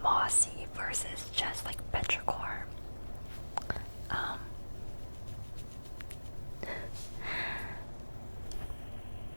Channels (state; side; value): inverted; both; correlation -1.00